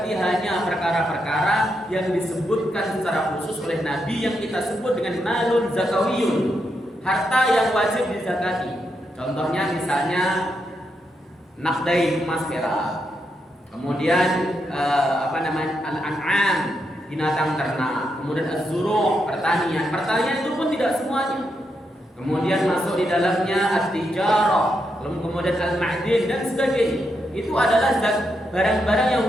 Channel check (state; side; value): normal; both; correlation 0.82